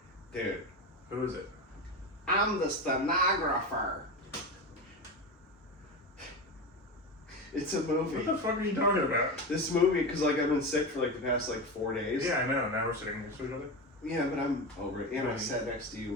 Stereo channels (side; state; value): both; normal; correlation 0.20